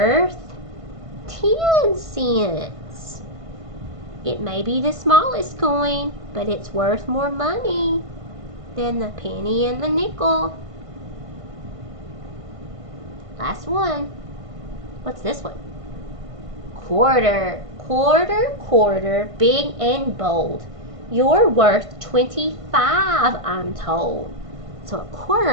10 cents. It may be the smallest coin, but it's worth more money than the penny and the nickel. Last one. What's this one? Quarter. Quarter, quarter, big and bold. You're worth 25, I'm told. So a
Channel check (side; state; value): left; late; 1.5 ms